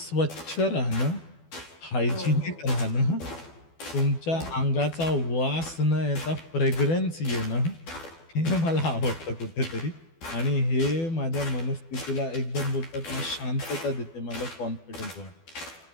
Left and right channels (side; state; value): right; late; 12 ms